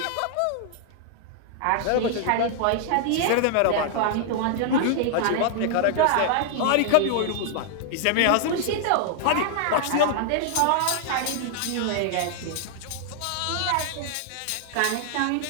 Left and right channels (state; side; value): different; both; correlation 0.00